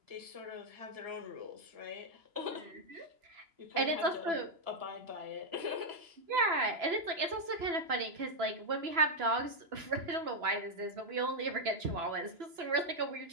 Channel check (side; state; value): left; late; 2.9 ms